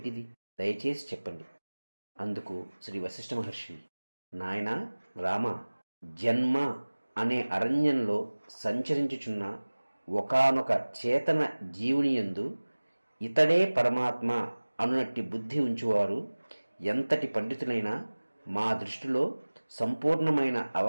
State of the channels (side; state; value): both; inverted; correlation -1.00